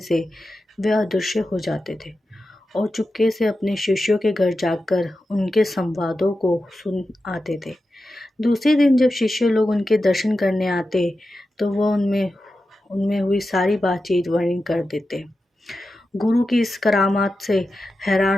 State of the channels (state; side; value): normal; both; correlation 0.91